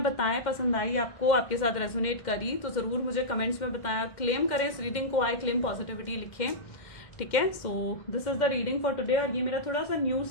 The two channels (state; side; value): late; right; 2.1 ms